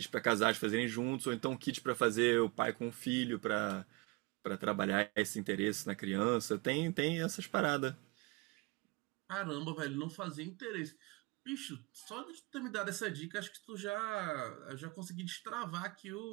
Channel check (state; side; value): quieter; left; 25.7 dB